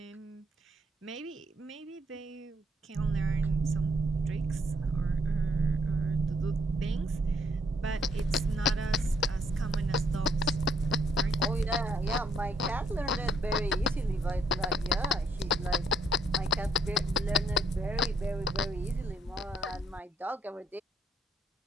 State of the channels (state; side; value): normal; both; correlation 0.70